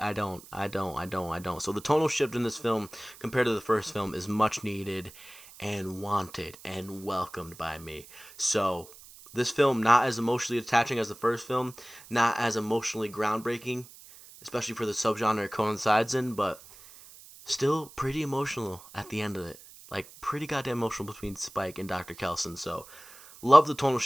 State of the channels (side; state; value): right; noise; hiss, 20 dB below the sound